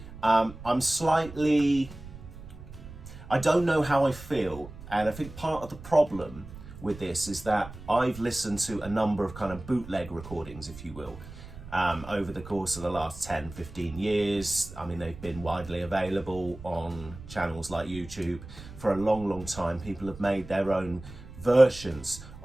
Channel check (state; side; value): noise; right; rumble, 15 dB below the sound